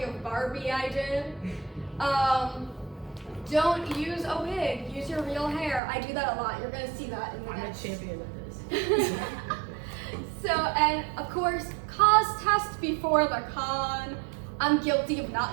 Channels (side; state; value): left; drops out; at 5.8 s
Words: of Barbie I did. Don't use a wig, use your real hair. I do that a lot. You're gonna see that in the I'm a next. champion of this. So, and of course, cos test before the con. I'm guilty of